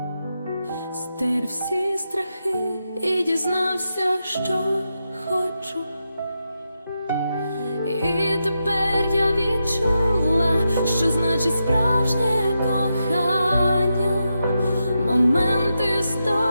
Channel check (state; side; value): inverted; both; correlation -0.86